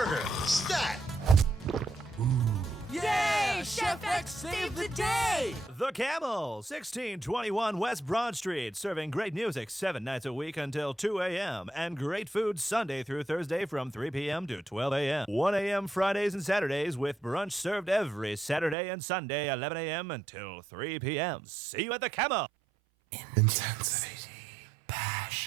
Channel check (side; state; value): left; drops out; at 18.8 s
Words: Stat. Yeah, Chef X saved the day. The Camel, 1621 West Broad Street, serving great music 7 nights a week until 2 a.m. and great food Sunday through Thursday from 3 p.m. to 12 a.m. 1 a.m. Fridays and Saturdays with brunch served every Saturday and Sunday 11 a.m. until 3 p.m. See you at The Camel. Intensity,